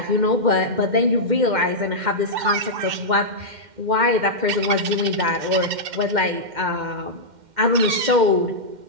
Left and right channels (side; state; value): left; late; 2.1 ms